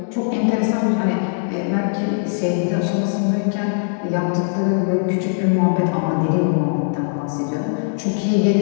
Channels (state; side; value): silent; right; digital silence